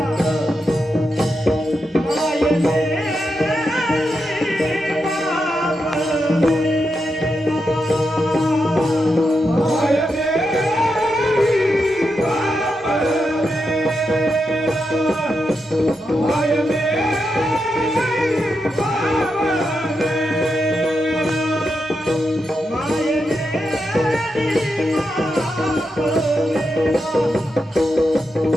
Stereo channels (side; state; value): both; normal; correlation 0.86